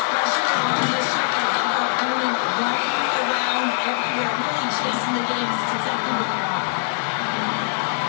pressure on this shot. Opponent running around everywhere, really chasing the game. This is exactly what they want.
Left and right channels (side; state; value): right; silent; digital silence